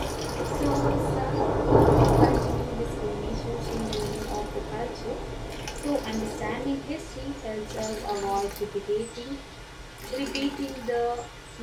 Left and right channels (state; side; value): identical; both; correlation 1.00